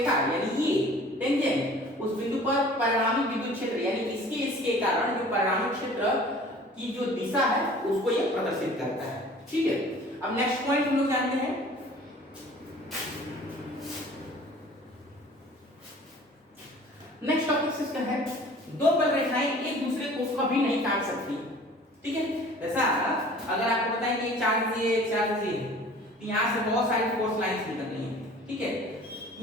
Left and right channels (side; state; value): both; normal; correlation 0.47